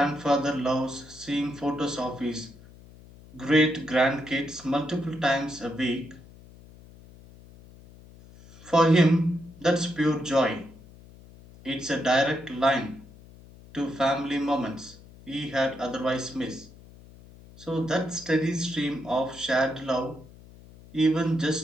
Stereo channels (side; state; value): left; noise; hum, 21 dB below the sound